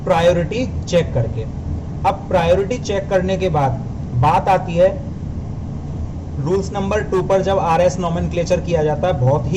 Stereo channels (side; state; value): both; identical; correlation 1.00